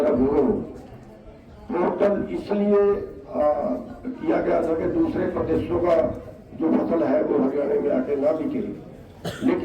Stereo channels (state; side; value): identical; both; correlation 1.00